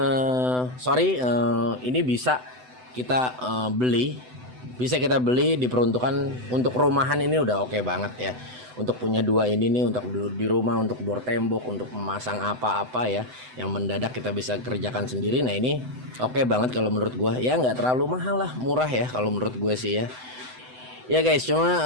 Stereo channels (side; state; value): left; late; 7.9 ms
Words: ini bisa kita beli diperuntukkan untuk rumahan, ini udah oke banget ya. Untuk punya dua ini nih untuk di rumah, untuk bor tembok, untuk memasang apa-apa ya yang mendadak kita bisa kerjakan sendiri. Nah ini oke banget kalau menurut gue ya, nggak terlalu mahal lah, murah ya kalau menurut gue sih ya. Ya guys,